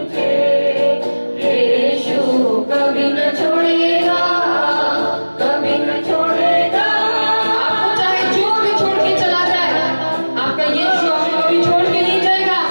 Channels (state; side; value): inverted; both; correlation -1.00